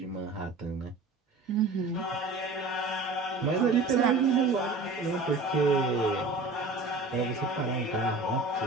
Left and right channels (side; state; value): left; quieter; 3.4 dB